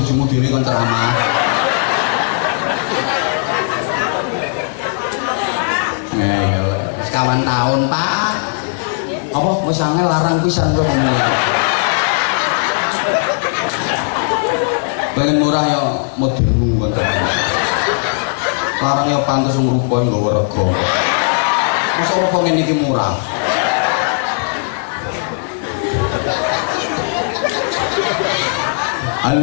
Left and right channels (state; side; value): silent; right; 69 dB below the other